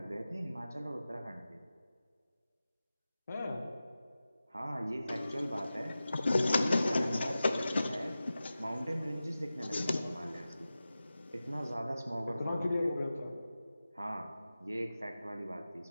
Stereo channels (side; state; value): both; inverted; correlation -0.95